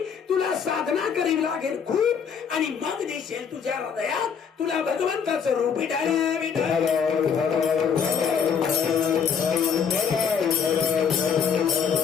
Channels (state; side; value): quieter; right; 6.8 dB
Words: तुला साधना करावी लागेल खूप आणि मग दिसेल तुझ्या हृदयात तुला भगवंताचं रूप. विठाला विठाला.